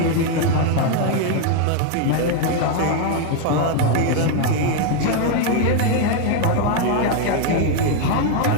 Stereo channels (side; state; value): both; different; correlation 0.01